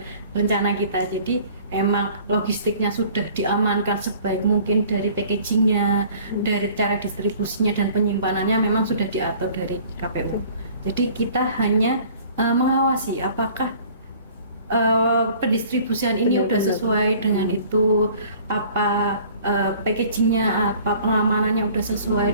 rencana kita. Jadi emang logistiknya sudah diamankan sebaik mungkin, dari packagingnya, dari cara distribusinya dan penyimpanannya memang sudah diatur dari KPU. Jadi kita hanya mengawasi apakah pendistribusian ini sudah sesuai dengan itu, apa packagingnya apa, pengamanannya udah sesuai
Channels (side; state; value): both; inverted; correlation -0.51